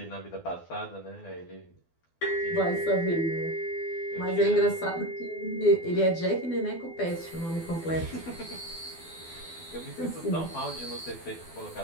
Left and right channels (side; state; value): right; late; 12 ms